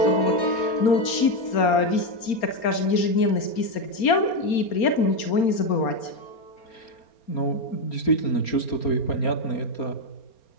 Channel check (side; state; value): right; late; 4.3 ms